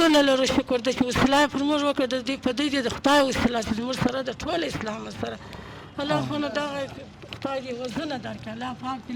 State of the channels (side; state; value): both; identical; correlation 1.00